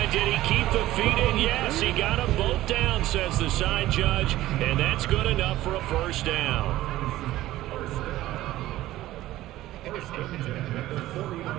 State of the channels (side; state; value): left; quieter; 15.5 dB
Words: Did he keep the feet in? Yes, he got them both down, says the side judge, and that's good enough for a 1st down.